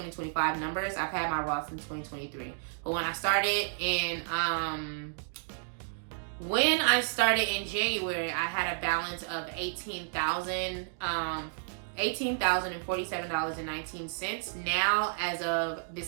numbers. I've had my Roth since 2023. But when I started in January, I had a balance of $18,047.19. Now, as of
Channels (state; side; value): silent; left; digital silence